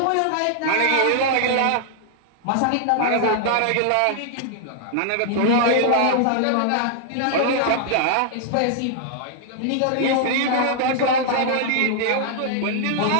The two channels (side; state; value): both; different; correlation 0.00